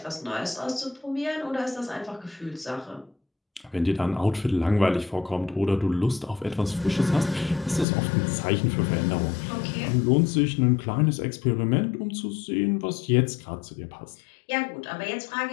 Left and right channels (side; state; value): right; drops out; at 7.9 s